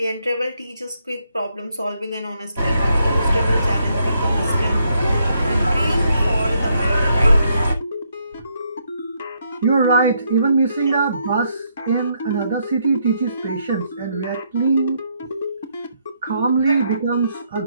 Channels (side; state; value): both; inverted; correlation -0.75